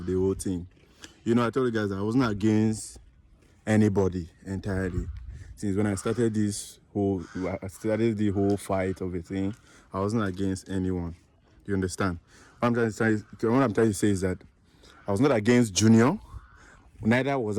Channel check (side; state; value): both; identical; correlation 1.00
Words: the whole thing. You know, I told you guys I wasn't against anybody entirely. Since when I started the whole fight of a thing, I wasn't against anyone. You understand? What I'm trying to say is that I was not against Junior, neither was